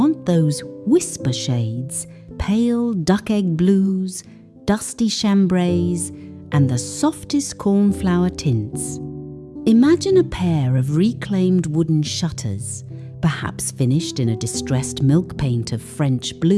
those whisper shades, pale duck egg blues, dusty chambrays, and the softest cornflower tints. Imagine a pair of reclaimed wooden shutters, perhaps finished in a distressed milk paint of French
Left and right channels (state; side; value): identical; both; correlation 1.00